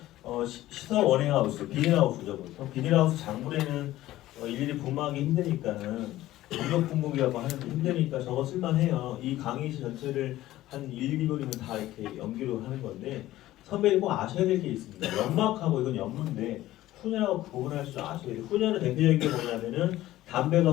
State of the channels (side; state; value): right; quieter; 15.4 dB